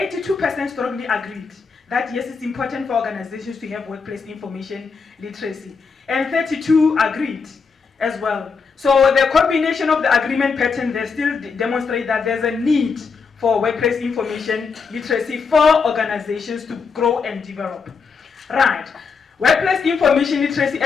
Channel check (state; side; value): quieter; right; 5.3 dB